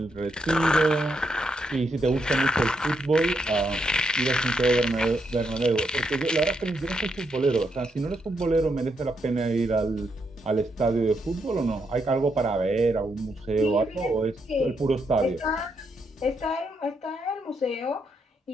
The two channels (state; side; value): normal; both; correlation 0.79